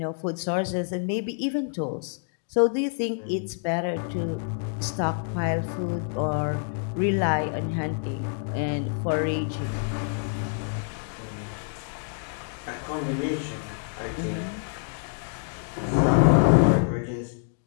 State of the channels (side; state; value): right; silent; 60 dB below the other